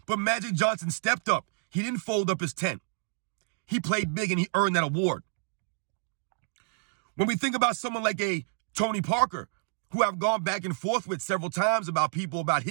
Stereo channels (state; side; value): silent; left; digital silence